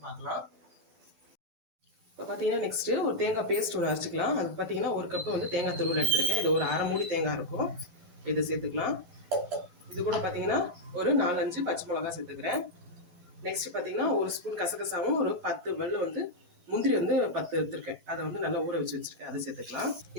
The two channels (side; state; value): left; late; 12 ms